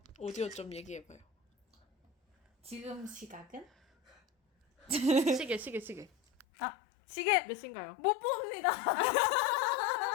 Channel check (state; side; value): drops out; right; at 6.5 s